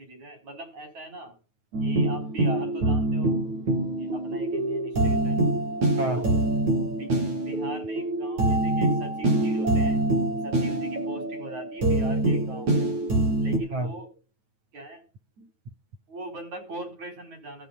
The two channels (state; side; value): late; left; 9.3 ms